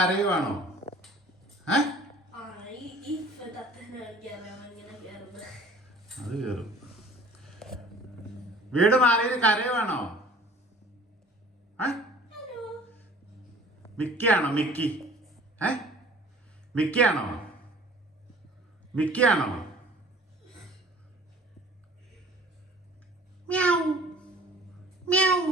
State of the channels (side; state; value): both; normal; correlation 0.48